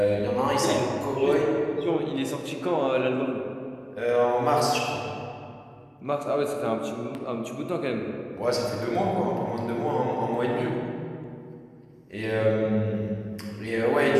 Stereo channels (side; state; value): both; identical; correlation 1.00